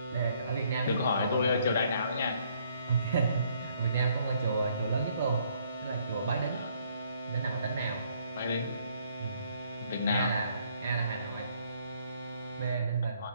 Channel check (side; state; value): both; inverted; correlation -0.66